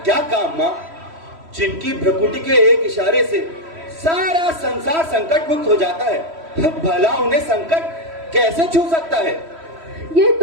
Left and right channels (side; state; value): left; late; 3.1 ms